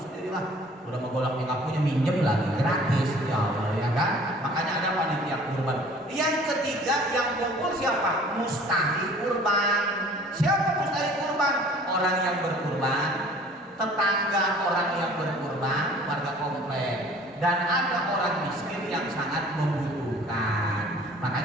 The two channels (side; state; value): both; normal; correlation 0.50